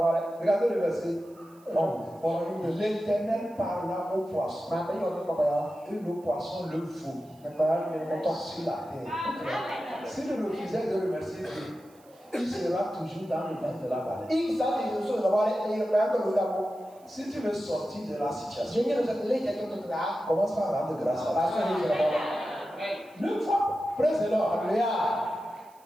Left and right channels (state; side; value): noise; right; hiss, 30 dB below the sound